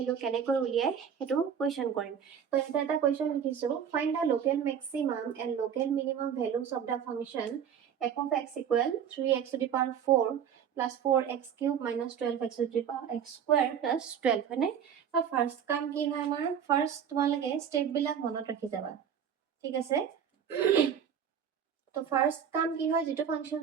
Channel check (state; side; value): quieter; left; 8.1 dB